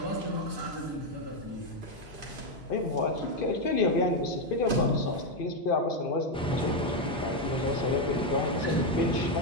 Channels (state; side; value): normal; both; correlation 0.05